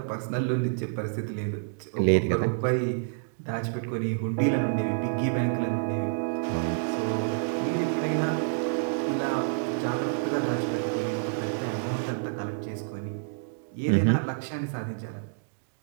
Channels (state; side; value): silent; left; digital silence